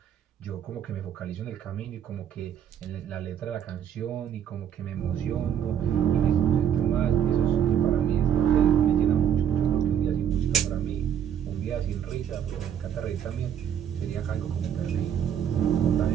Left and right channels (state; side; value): quieter; left; 9.2 dB